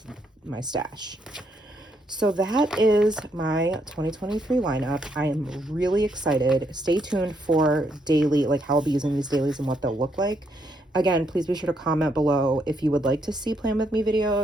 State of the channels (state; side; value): normal; both; correlation 0.75